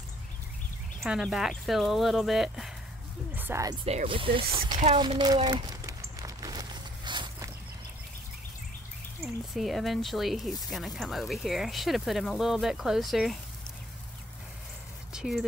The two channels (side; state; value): both; normal; correlation 0.60